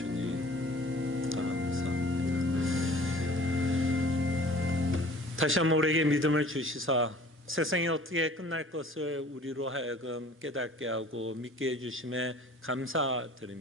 감사합니다. 다시 한번 우리에게 믿음을 주시사 세상이 어떻게 끝날 것을 우리로 하여금 깨닫게 하고 믿게 해주심에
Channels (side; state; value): both; normal; correlation 0.48